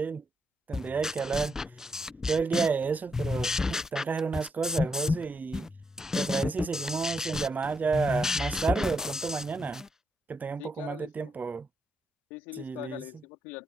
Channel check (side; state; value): both; normal; correlation 0.80